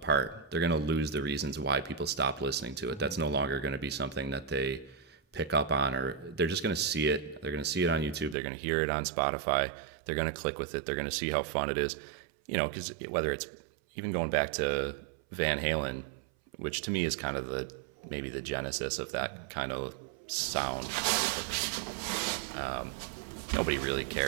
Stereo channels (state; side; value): drops out; left; at 8.3 s